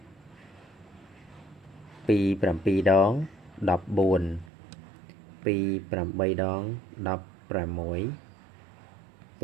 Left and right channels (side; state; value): left; drops out; at 4.5 s